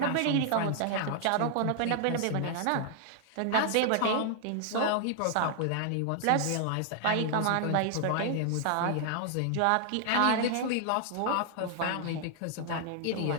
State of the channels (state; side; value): different; both; correlation 0.00